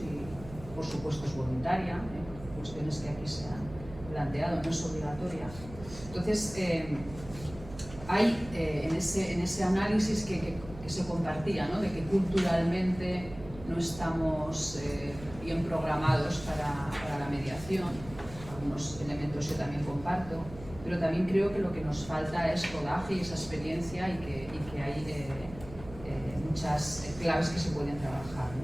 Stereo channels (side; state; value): right; noise; hum, 15 dB below the sound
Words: por supuesto, es voluntaria, cuestiones que aquí se han planteado, no es obligatoria. Entonces, hay en ese análisis que se compartía, ¿no? De que culturalmente no estamos bien programados para la mediación. Algunos elementos yo también comparto, pero también creo que lo que nos falta es rodaje y esa experiencia y que hay muchas claves que se pueden trabajar, ¿no?